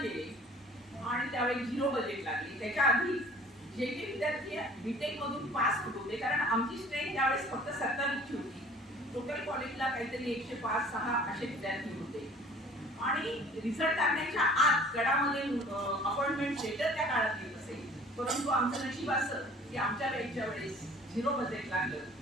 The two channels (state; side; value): normal; both; correlation 0.50